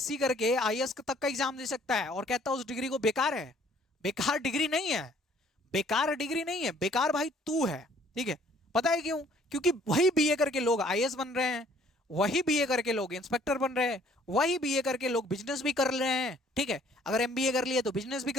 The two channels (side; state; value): both; normal; correlation 0.59